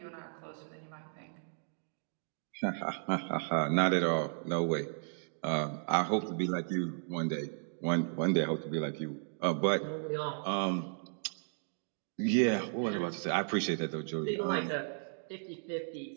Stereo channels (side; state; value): left; silent; digital silence